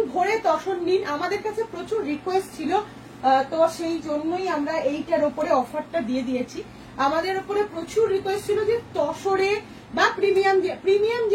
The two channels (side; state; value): both; identical; correlation 1.00